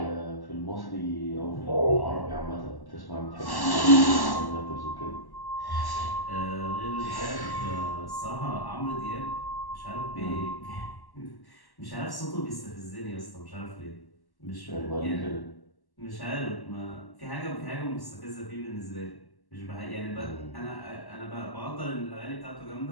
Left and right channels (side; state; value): right; late; 1.1 ms